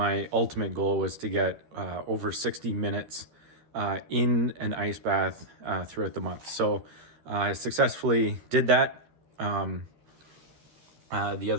ultimate goal was to get over 60 minutes in an ice bath throughout the month. So I successfully did that. The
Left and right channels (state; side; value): late; left; 13 ms